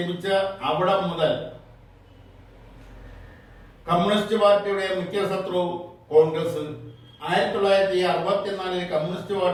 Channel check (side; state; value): both; identical; correlation 1.00